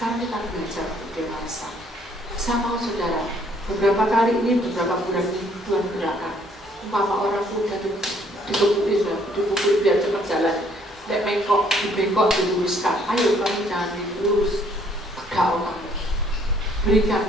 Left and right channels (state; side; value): normal; both; correlation 0.63